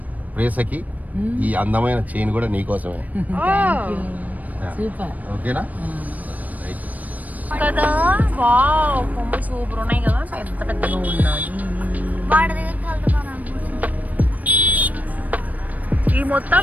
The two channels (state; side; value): late; left; 0.075 ms